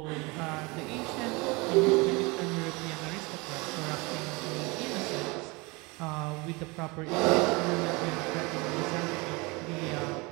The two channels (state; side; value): quieter; left; 26.0 dB